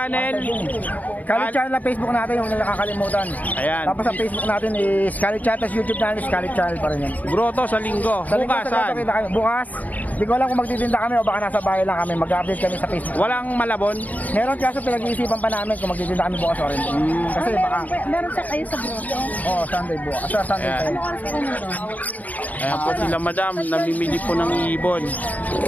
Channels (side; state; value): right; late; 0.076 ms